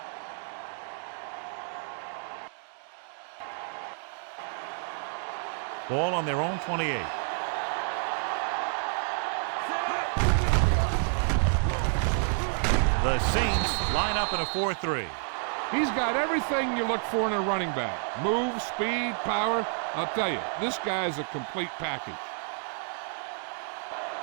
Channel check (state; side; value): silent; left; 58 dB below the other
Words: Ball on their own 28. The Saints line up in a 4-3. He's got everything you look for in a running back. Move, speed, power. I'll tell you, this guy's a complete package.